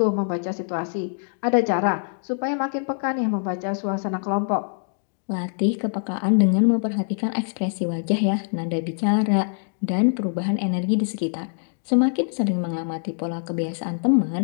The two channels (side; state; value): right; silent; digital silence